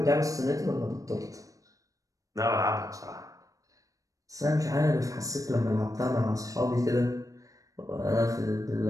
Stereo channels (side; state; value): left; late; 0.16 ms